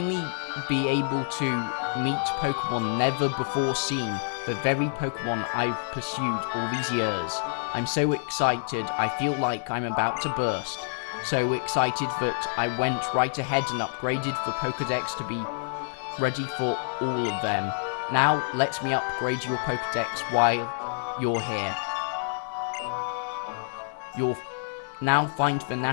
be able to meet Pokemon never before seen, the very Pokemon I've pursued all these years. I'm so excited, I feel like I'm about to burst. So excited that I went right ahead and upgraded the Pokedex to be ready for all of them. Now, let me upgrade your Pokedex while you're here. You'll now find the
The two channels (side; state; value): right; silent; 60 dB below the other